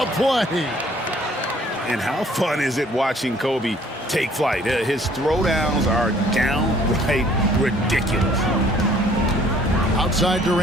play. And how fun is it watching Kobe take flight? His throwdowns are downright ridiculous. Outside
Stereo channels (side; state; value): both; normal; correlation 0.58